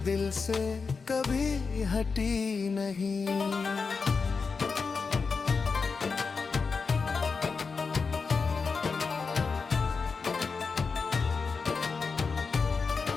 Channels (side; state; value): right; quieter; 4.9 dB